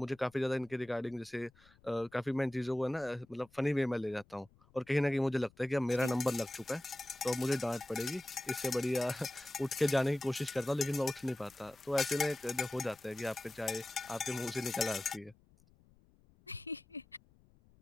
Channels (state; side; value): noise; left; rumble, 29 dB below the sound